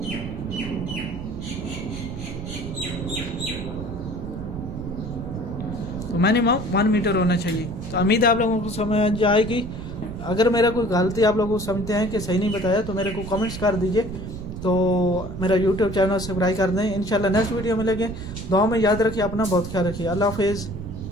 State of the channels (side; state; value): right; noise; rumble, 9 dB below the sound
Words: तो मिनिमम 1 मीटर होना चाहिए। तो उम्मीद है आप लोगों को समझ आएगी। अगर मेरा कोई गलती आप लोगों को समझते हैं कि सही नहीं बताया तो मेरे को कमेंट्स कर दीजिए। तो मेरा YouTube चैनल सब्सक्राइब कर दें। इंशाल्लाह नेक्स्ट वीडियो मिलेंगे। दुआ में याद रखिए, अपना बहुत ख्याल रखिए। अल्लाह हाफिज़।